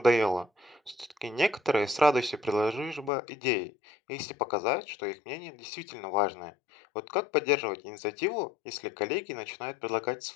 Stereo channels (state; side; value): drops out; right; at 3.1 s